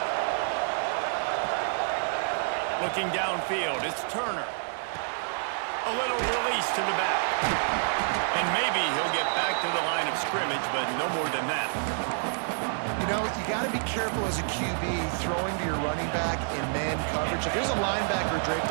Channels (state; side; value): silent; left; digital silence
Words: Looking downfield, it's Turner. A little release to the back. And maybe he'll get back to the line of scrimmage, but no more than that. You know, you got to be careful as a QB throwing to your running back in man coverage. If there's a linebacker draped